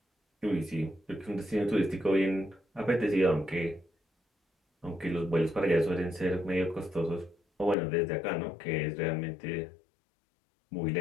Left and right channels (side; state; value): right; drops out; at 7.8 s